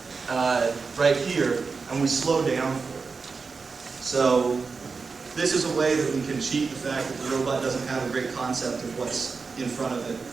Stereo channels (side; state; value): left; quieter; 4.7 dB